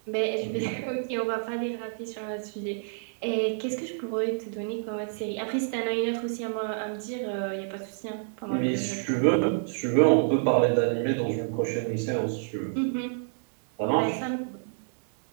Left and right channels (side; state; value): left; silent; digital silence